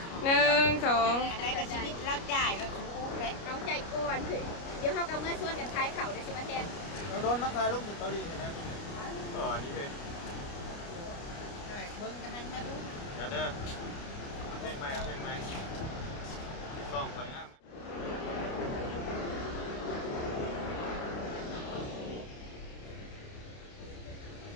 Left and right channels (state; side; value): late; right; 29 ms